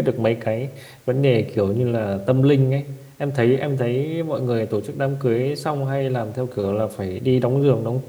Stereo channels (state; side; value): identical; both; correlation 1.00